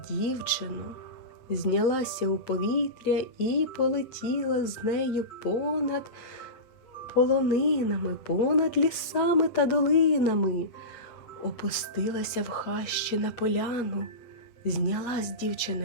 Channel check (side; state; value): right; late; 8.3 ms